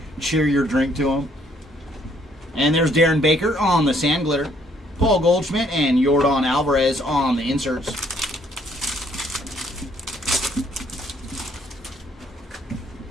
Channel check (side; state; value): both; normal; correlation 0.66